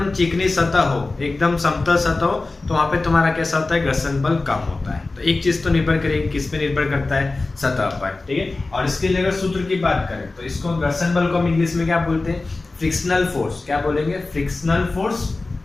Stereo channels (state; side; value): quieter; right; 3.4 dB